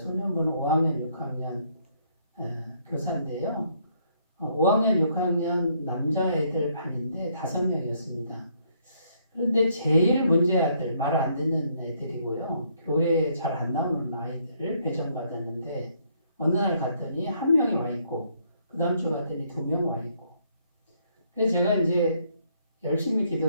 5학년, 6학년 교사인데요. 5학년, 6학년 남자애들 반인데 5명이었습니다. 그런데 제일 문제아들, 말 안 듣는 애들이고요. 교회에 잘 안 나오는 아이들을 배정받았는데 어느 날 갔더니 한 명이 와 있고 그 다음 주 갔더니 2명 와 있고 그래서 제가 이제 열심히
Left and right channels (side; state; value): both; inverted; correlation -0.69